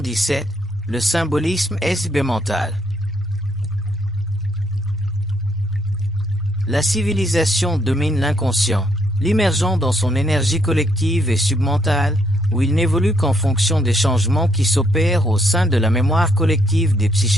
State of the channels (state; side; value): normal; both; correlation 0.71